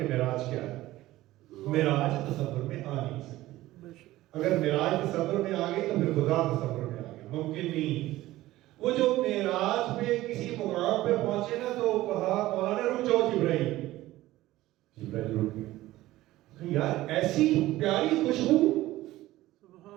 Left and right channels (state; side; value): quieter; left; 16.4 dB